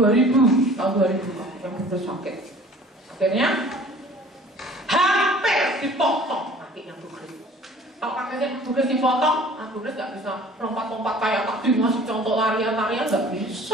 yang benar sakit. Akhirnya hampir dipotong kakinya Bu Grace. Kalau kakinya Bu Grace dipotong, Bu Grace gak bisa lompat-lompat kayak tadi ngasih contoh larian-larian, gak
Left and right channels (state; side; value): normal; both; correlation 0.49